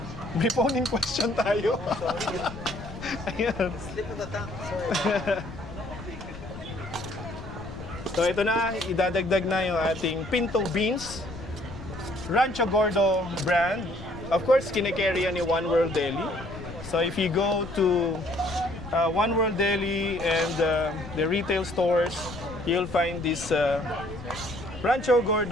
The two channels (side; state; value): left; noise; rumble, 12 dB below the sound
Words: May phone-in question tayo. Ayan. So ito na, idadagdag na yung ating pinto beans. Rancho Gordo brand. Of course, kinikerry yan ni One World Deli. So if you go to One World Deli and the retail stores, you'll find this Rancho